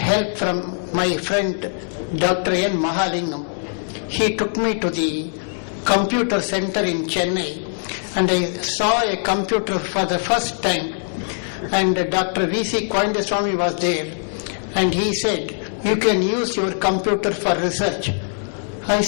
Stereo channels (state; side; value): silent; right; digital silence